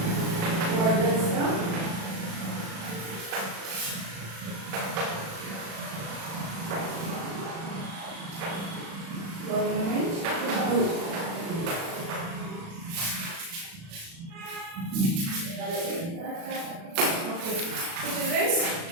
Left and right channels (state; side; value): late; left; 36 ms